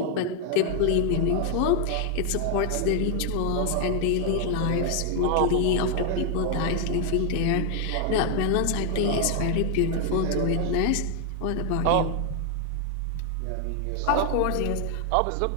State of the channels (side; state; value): both; different; correlation 0.00